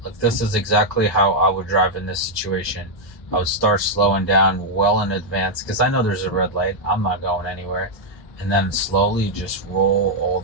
Look, this is exactly how I would drive in this situation. I would start slowing down well in advance because I know there's a red light. I'm not going anywhere. And then slowly just roll all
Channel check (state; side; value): late; right; 1.2 ms